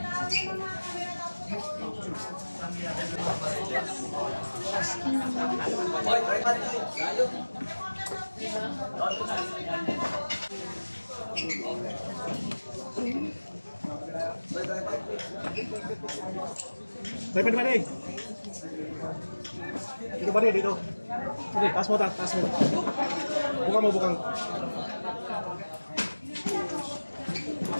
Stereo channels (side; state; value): both; inverted; correlation -1.00